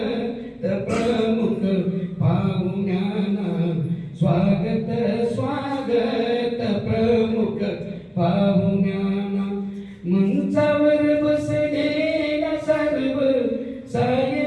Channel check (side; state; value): both; identical; correlation 1.00